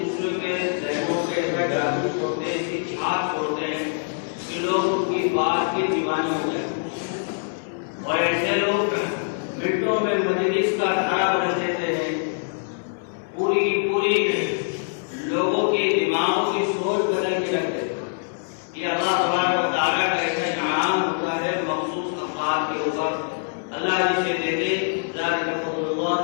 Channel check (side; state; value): right; silent; digital silence